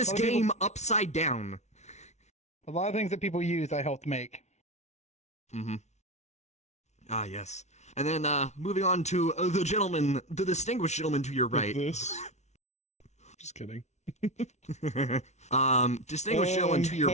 a lot of people- game upside down. A lot of things that people use, I helped make. Mm-hmm. Ah, yes. And then moving on to the distinguished gentleman to your right. This. Just kidding. Distinguished gentleman to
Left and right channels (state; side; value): late; right; 0.32 ms